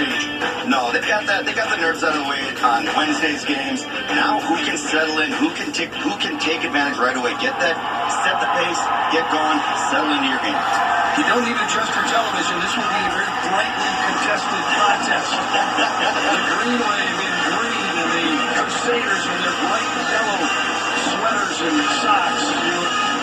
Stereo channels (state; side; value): identical; both; correlation 1.00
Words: No, they got the nerves out of the way on Wednesday's games. Now who can settle in, who can take advantage right away, get the pace, get going, settle into your game. You don't need to adjust your television. This will be a very blatantly contested contest. The Green Wave in green and the Crusaders in their bright yellow sweaters and socks.